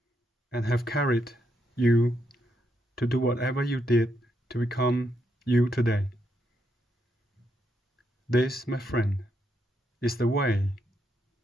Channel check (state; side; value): normal; both; correlation 0.79